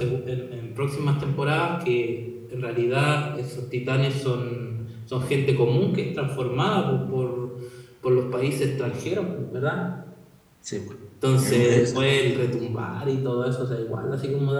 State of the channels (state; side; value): identical; both; correlation 1.00